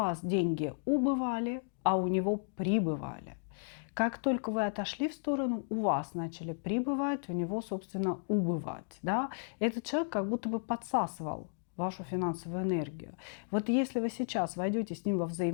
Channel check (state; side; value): silent; right; digital silence